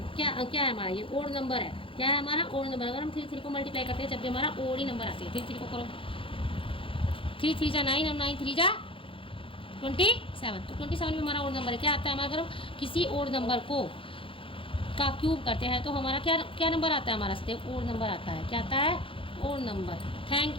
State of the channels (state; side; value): late; right; 0.25 ms